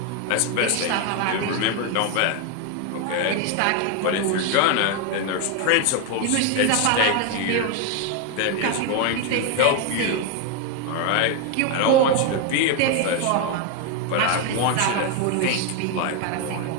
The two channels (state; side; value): different; both; correlation 0.01